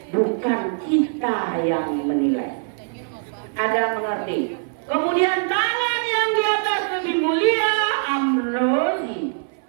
bukan kita yang menilai. Ada mengerti? Kemudian tangan yang di atas lebih mulia, Amrozi.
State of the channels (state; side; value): silent; left; 59 dB below the other